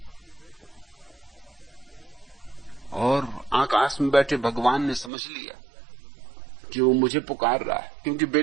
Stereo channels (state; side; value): drops out; left; at 5.1 s